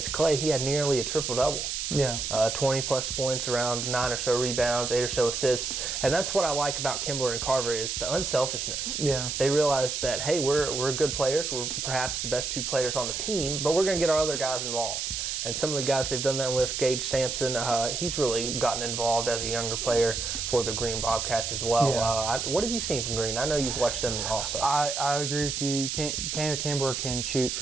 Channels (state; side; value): noise; right; hiss, 2 dB below the sound